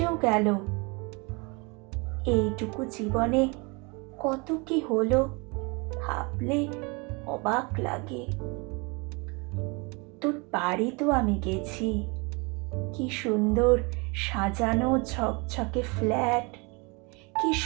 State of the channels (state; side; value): quieter; left; 29.4 dB